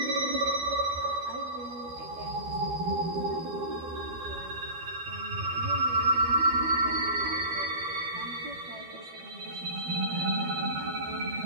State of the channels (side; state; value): left; late; 12 ms